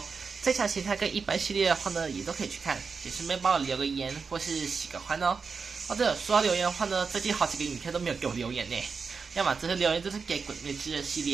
这场形态跟一般系列的话呢，也都可以去看，也顺便帮我留个言或是喜个欢哦。哦对了，说到留言的话呢，最近好几个影片都没有给我留言呢，要么这些留言都是给鬼灭之刃系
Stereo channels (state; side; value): quieter; left; 5.2 dB